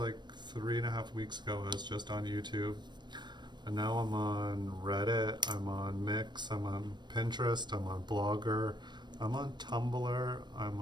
3.5 weeks ago, I was just on YouTube. And now I'm on Reddit, I'm on Mix, I'm on Pinterest, I'm on Blogger, I'm on Tumblr, I'm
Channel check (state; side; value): late; left; 0.22 ms